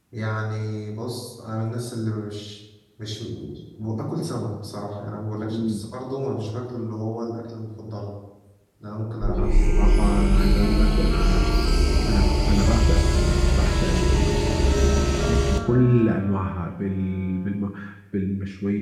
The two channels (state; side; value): identical; both; correlation 1.00